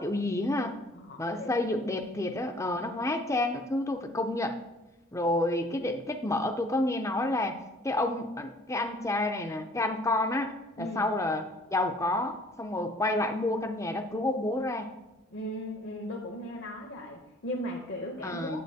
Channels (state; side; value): normal; both; correlation 0.55